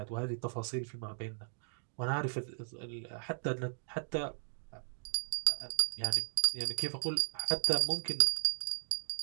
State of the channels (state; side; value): silent; left; digital silence